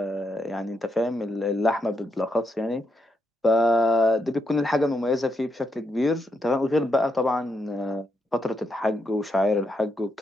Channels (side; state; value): both; normal; correlation 0.81